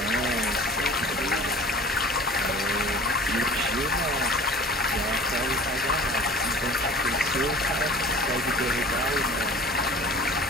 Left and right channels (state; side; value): normal; both; correlation 0.44